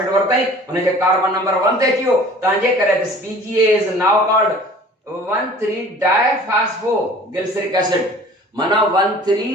वरतई उन जे कार्बन नंबर 1 ते अचियो तांजे करे this PGA is now called 1,3 diphosphoglyceric acid. माना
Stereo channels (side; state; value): both; normal; correlation 0.47